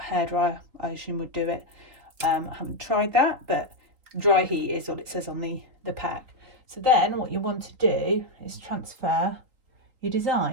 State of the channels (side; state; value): left; late; 3.8 ms